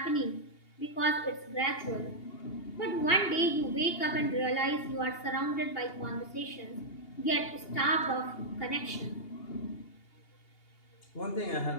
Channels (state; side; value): late; right; 2.8 ms